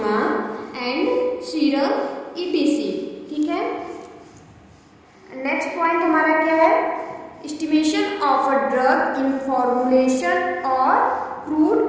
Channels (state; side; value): identical; both; correlation 1.00